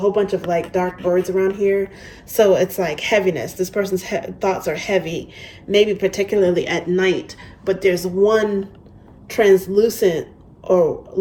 bunch of like dark birds around here. So it's like heaviness. This person's thoughts are heavy, maybe particularly at night, but there's one translucent or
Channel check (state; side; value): identical; both; correlation 1.00